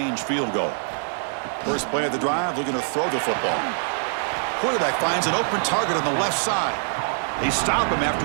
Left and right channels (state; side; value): silent; left; digital silence